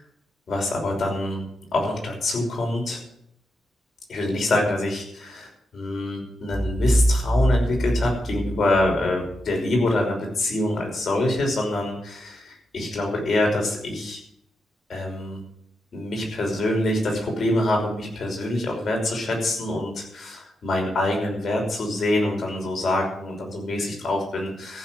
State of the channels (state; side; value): normal; both; correlation 0.85